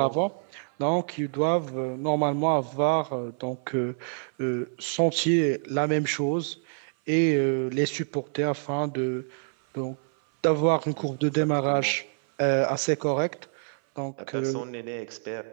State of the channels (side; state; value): left; silent; 57 dB below the other